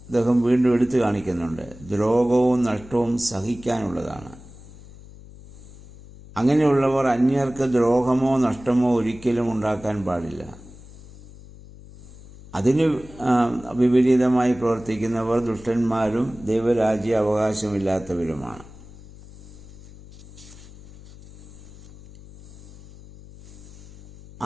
അദ്ദേഹം വീണ്ടും എടുത്തു കാണിക്കുന്നുണ്ട്. ദ്രോഹവും നഷ്ടവും സഹിക്കാനുള്ളതാണ്. അങ്ങനെയുള്ളവർ അന്യർക്ക് ദ്രോഹമോ നഷ്ടമോ ഒരിക്കലും ഉണ്ടാക്കാൻ പാടില്ല. അതിന് വിപരീതമായി പ്രവർത്തിക്കുന്നവർ ദുഷ്ടന്മാരും ദൈവരാജ്യ അവകാശമില്ലാത്തവരുമാണ്.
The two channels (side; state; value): left; noise; hum, 19 dB below the sound